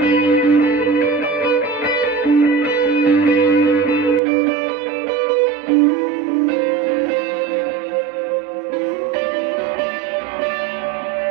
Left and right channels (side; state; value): left; drops out; at 4.2 s